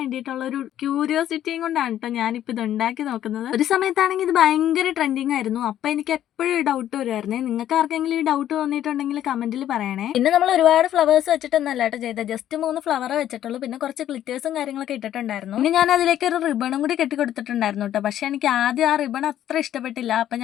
ഒരു ക്യൂരിയോസിറ്റിയും കൊണ്ടാണ് കേട്ടോ ഞാനിപ്പോൾ ഇത് ഉണ്ടാക്കി നോക്കുന്നത്. ഒരു സമയത്താണെങ്കിൽ ഇത് ഭയങ്കര ട്രെൻഡിങ് ആയിരുന്നു. അപ്പൊ എനിക്ക് എപ്പോഴും ഡൗട്ട് വരുമായിരുന്നേ. നിങ്ങൾക്ക് ആർക്കെങ്കിലും ഈ ഡൗട്ട് തോന്നിയിട്ടുണ്ടെങ്കിൽ കമന്റിൽ പറയണേ. പിന്നെ നമ്മൾ ഒരുപാട് ഫ്ലവേഴ്സ് വെച്ചിട്ടൊന്നല്ല കേട്ടോ ചെയ്തത്. ജസ്റ്റ് 3 ഫ്ലവർ വെച്ചിട്ടുള്ളൂ. പിന്നെ കുറച്ച് ഗ്ലിറ്റേഴ്സും കാര്യങ്ങളൊക്കെ ഇട്ടിട്ടുണ്ടായിരുന്നു. പിന്നെ ഞാൻ അതിലേക്ക് ഒരു റിബണും കൂടി കെട്ടി കൊടുത്തിട്ടുണ്ടായിരുന്നു കേട്ടോ. പക്ഷെ എനിക്ക് ആദ്യം ആ റിബൺ അത്ര ഇഷ്ടപ്പെട്ടില്ല. അപ്പൊ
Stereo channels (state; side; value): quieter; right; 11.6 dB